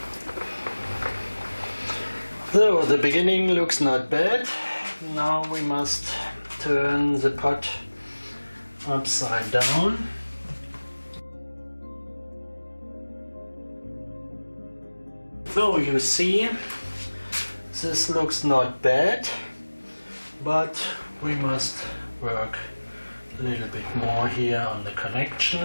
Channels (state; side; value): inverted; both; correlation -1.00